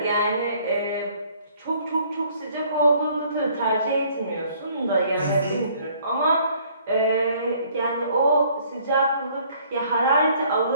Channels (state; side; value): inverted; both; correlation -0.60